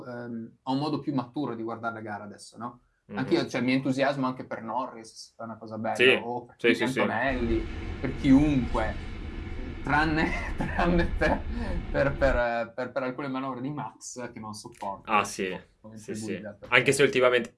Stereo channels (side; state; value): both; identical; correlation 1.00